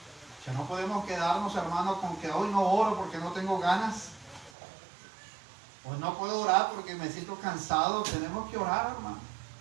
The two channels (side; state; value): left; drops out; at 4.5 s